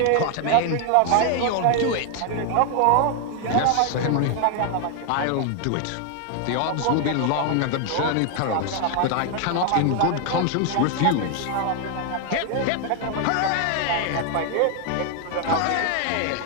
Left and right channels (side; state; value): both; different; correlation 0.00